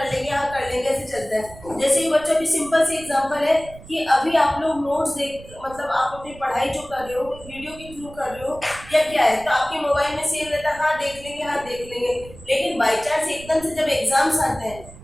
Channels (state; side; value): noise; right; rumble, 18 dB below the sound